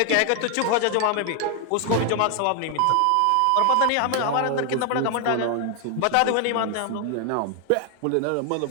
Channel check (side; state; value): both; different; correlation 0.00